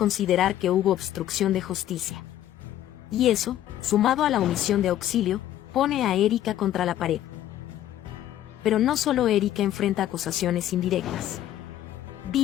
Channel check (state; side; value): quieter; right; 12.3 dB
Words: que hubo obstrucción de justicia. Y eso, sumado a la omisión de auxilio, pone a Erika contra la pared. Pero no solo Erika enfrenta acusaciones indirectas.